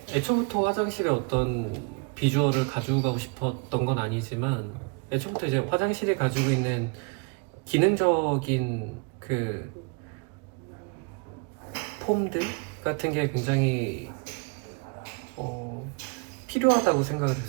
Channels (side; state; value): left; quieter; 31.8 dB